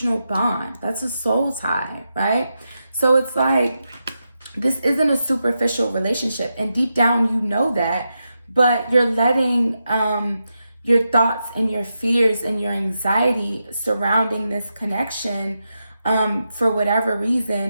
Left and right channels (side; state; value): both; inverted; correlation -0.87